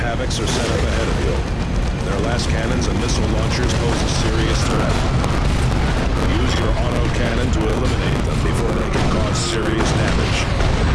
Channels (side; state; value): both; identical; correlation 1.00